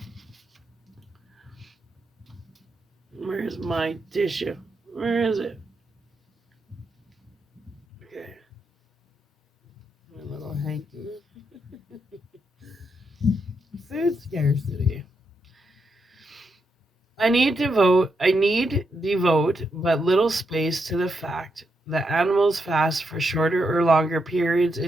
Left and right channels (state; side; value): normal; both; correlation 0.82